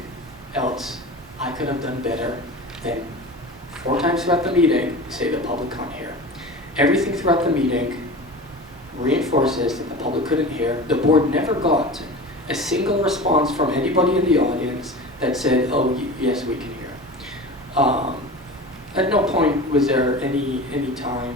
else I could have done better than 4 times throughout the meeting say the public can't hear. Everything throughout the meeting reinforces that the public couldn't hear. The board never got a single response from anybody in the audience that said, oh, yes, we can hear. At no point was there any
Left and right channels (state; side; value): normal; both; correlation 0.33